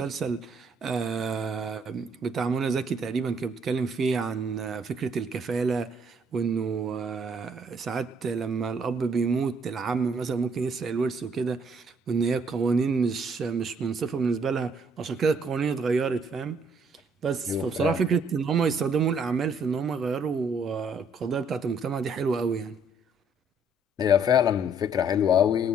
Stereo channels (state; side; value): normal; both; correlation 0.66